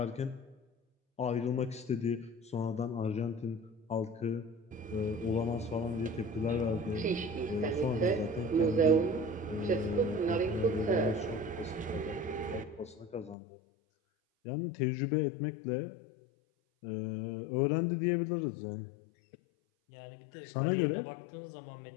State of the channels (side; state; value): right; drops out; at 13.4 s